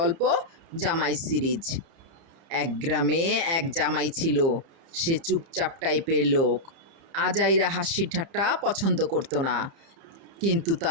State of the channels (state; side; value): late; left; 30 ms